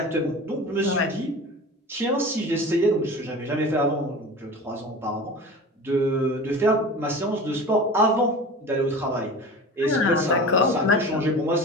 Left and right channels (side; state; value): both; normal; correlation 0.35